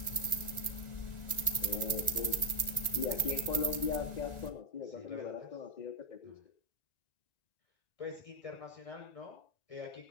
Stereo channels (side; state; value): right; late; 1.9 ms